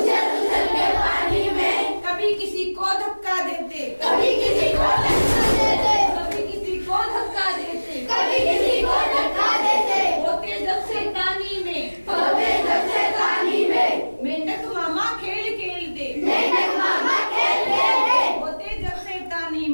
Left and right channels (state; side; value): inverted; both; correlation -1.00